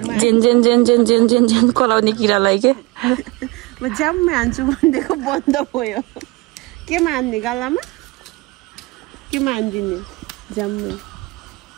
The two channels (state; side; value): quieter; left; 24.2 dB